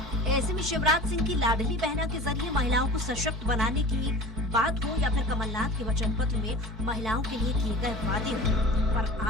ऐसे में शिवराज सिंह की लाडली बहना के जरिए महिलाओं को सशक्त बनाने की बात हो या फिर कमलनाथ के वचन पत्र में महिलाओं के लिए किए गए वादे हो, पर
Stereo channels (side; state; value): both; normal; correlation 0.36